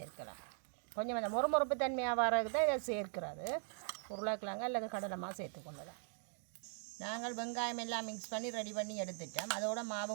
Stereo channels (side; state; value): left; silent; 51 dB below the other